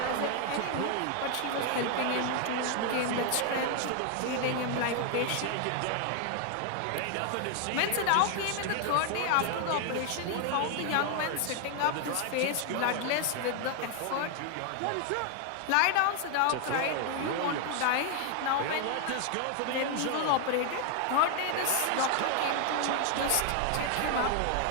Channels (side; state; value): both; different; correlation 0.00